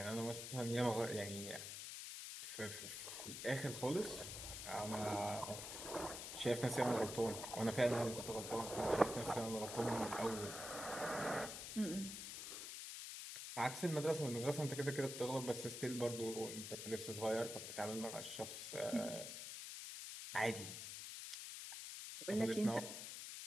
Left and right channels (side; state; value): left; noise; hiss, 7 dB below the sound